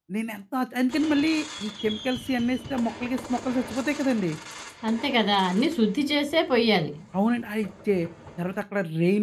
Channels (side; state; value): both; identical; correlation 1.00